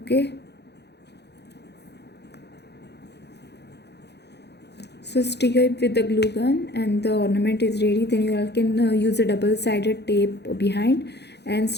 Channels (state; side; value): late; right; 0.49 ms